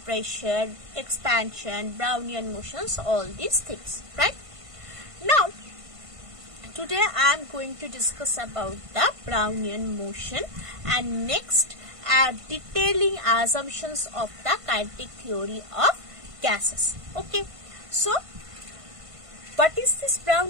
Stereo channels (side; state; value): left; late; 1.5 ms